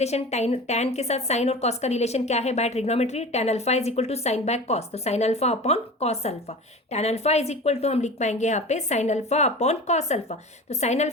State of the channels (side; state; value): both; normal; correlation 0.35